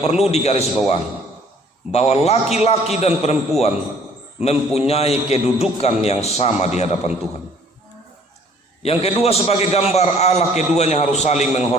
perlu digarisbawahi, bahwa laki-laki dan perempuan mempunyai kedudukan yang sama di hadapan Tuhan. Yang kedua, sebagai gambar Allah, keduanya harus saling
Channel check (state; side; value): normal; both; correlation 0.57